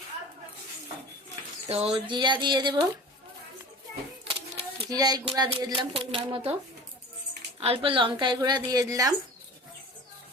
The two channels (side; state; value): both; normal; correlation 0.38